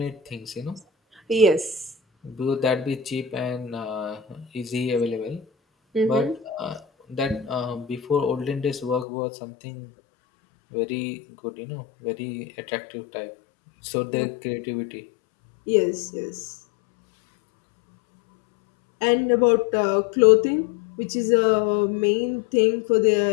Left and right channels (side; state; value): right; drops out; at 9.1 s